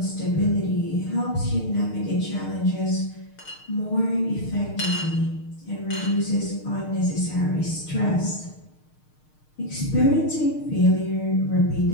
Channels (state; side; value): late; right; 6.6 ms